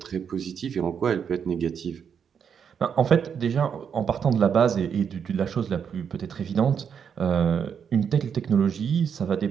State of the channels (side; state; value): left; quieter; 7.3 dB